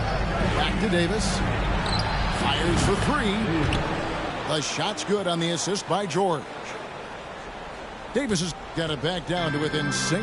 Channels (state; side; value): identical; both; correlation 1.00